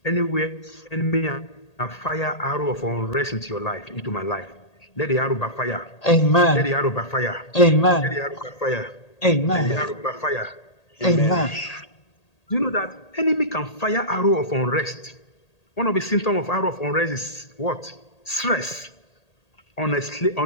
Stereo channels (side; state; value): right; late; 1.8 ms